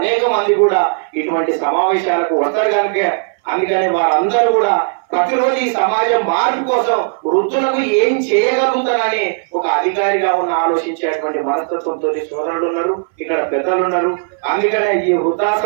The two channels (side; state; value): left; silent; 61 dB below the other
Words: మంది కూడా ఇటువంటి సమావేశాలకు వస్తారు కనుక అందుకని వారందరూ కూడా ప్రతిరోజు ఈ సమాజం మార్పు కోసం వృద్ధులకు ఏం చేయగలుగుతానని ఒక అధికారిగా ఉన్న ఆలోచించేటువంటి మనస్తత్వంతో సోదరులు ఉన్నారు, ఇక్కడ పెద్దలు ఉన్నారు. అందుకనే ఈ